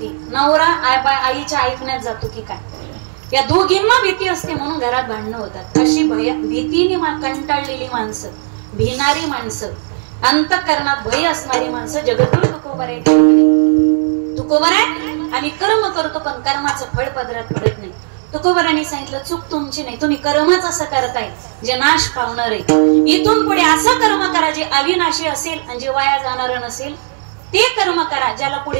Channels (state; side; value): silent; left; 69 dB below the other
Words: नवरा आईच्या ऐकण्यात जातो की काय. या दोघींना भीती असते म्हणून घरात भांडणं होतात. अशी भीतीने कंटाळलेली माणसं, भिणारी माणसं, अंतःकरणात भय असणारी माणसं जगतभर तुकोबर आहे. तुकोबर आहे आणि कर्म करतो पण कर्माचं फळ पदरात पडत नाही. तुकोबरांनी सांगितलं चूक तुमची नाही, तुम्ही कर्मच असं करताय जे नाश पावणार आहे. इथून पुढे असं कर्म करा जे अविनाशी असेल आणि जे वाया जाणार नसेल. ते कर्म करा ज्याला